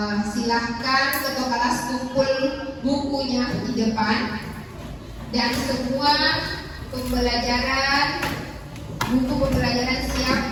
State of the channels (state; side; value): identical; both; correlation 1.00